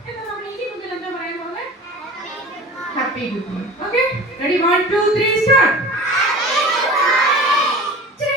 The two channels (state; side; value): normal; both; correlation 0.38